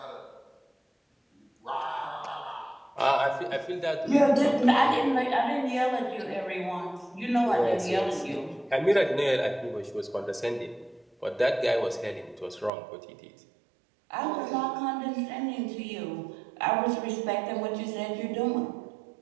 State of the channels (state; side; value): drops out; left; at 12.7 s